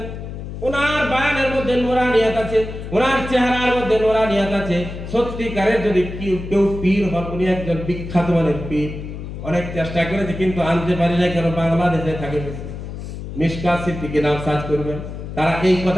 ওনার বায়ানের মধ্যে নূরানিয়াত আছে, ওনার চেহারার মধ্যে নূরানিয়াত আছে। সত্যিকারের যদি কেউ পীর হন, উনি একজন বিখ্যাত মানের পীর। অনেক চেষ্টা করেছে কিন্তু আনতে পারি না, কেন বাংলাদেশে থাকে বেশি। মিশকাত সিদ্দিকী নাম সার্চ করবেন, তারা এই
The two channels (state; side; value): noise; left; hum, 9 dB below the sound